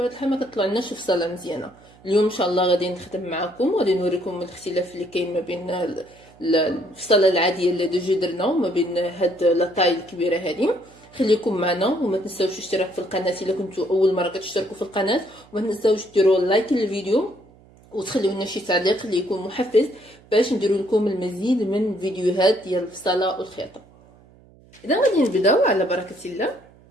الحال ما كطلعناش فصله مزيانه. اليوم ان شاء الله غادي نخدم معكم وغادي نوريكم الاختلاف اللي كاين ما بين الفصله العاديه اللي ديجا درنا وما بين هاد لاطاي الكبيره هذه. خليكم معنا وما تنساوش الاشتراك في القناه الا كنتوا اول مره كتشتركوا في القناه، وما تنساوش ديروا لايك للفيديو وتخليو لنا شي تعليق اللي يكون محفز باش نديروا لكم المزيد من فيديوهات ديال البصله والخياطه. اذا غادي نبداو على بركه الله.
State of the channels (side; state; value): right; noise; hum, 27 dB below the sound